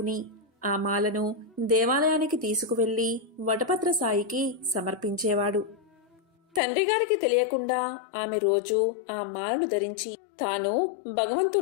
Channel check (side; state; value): right; drops out; at 6.6 s